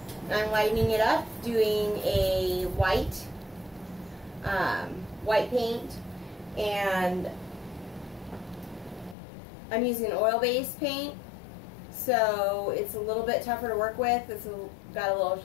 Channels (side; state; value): right; drops out; at 9.2 s